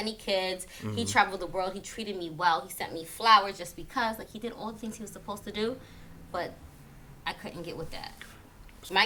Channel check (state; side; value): identical; both; correlation 1.00